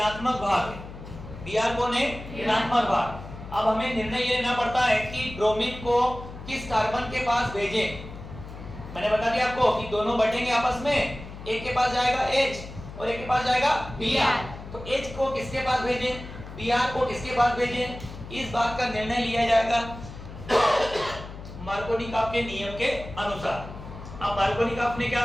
भाग है। Br कौन है? ऋणात्मक भाग। अब हमें निर्णय ये लेना पड़ता है कि ब्रोमीन को किस कार्बन के पास भेजें। मैंने बता दिया आपको कि दोनों बढ़ेंगे आपस में, एक के पास जाएगा H और एक के पास जाएगा Br। तो H को किसके पास भेजें, Br को किसके पास भेजें, इस बात का निर्णय लिया जाएगा मार्कोनिकॉफ के नियम के अनुसार। अब मार्कोनिकॉफ ने क्या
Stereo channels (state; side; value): noise; left; hum, 13 dB below the sound